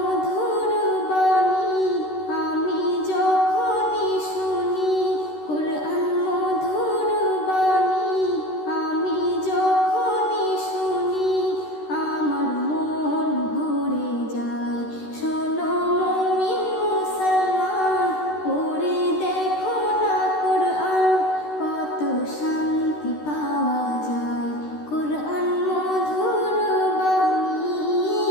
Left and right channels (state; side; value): late; right; 13 ms